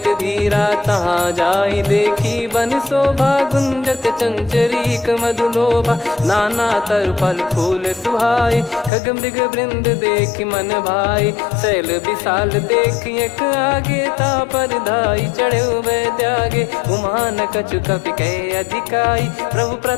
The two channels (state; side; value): drops out; right; at 8.9 s